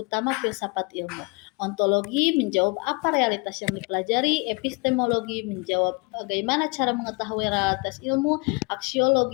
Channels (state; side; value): quieter; right; 29.9 dB